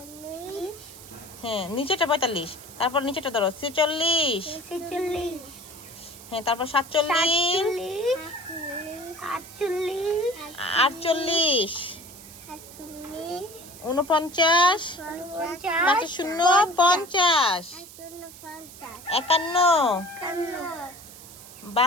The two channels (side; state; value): right; noise; hiss, 17 dB below the sound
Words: হ্যাঁ, নিচেটা 45। তারপর নিচেটা ধরো 46, হ্যাঁ, তারপর 47, 48, 49, 5 শূন্য 50, 51,